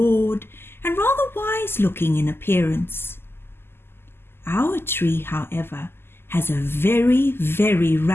and rather wise-looking in appearance. Our tree, however, has a very, very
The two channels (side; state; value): right; late; 0.11 ms